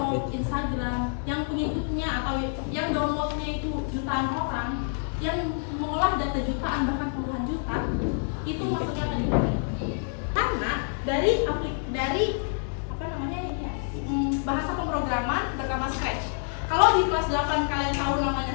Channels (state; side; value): silent; right; digital silence